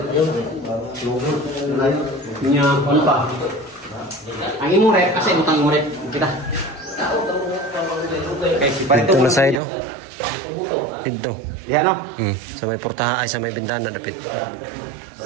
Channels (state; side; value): drops out; left; at 9.6 s